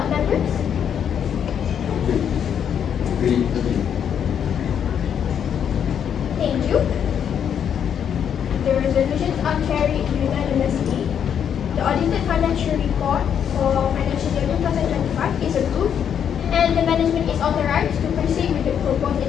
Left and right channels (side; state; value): right; quieter; 8.4 dB